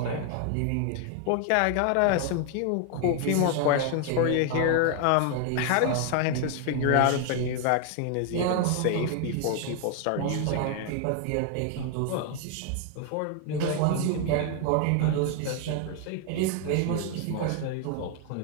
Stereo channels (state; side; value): different; both; correlation 0.00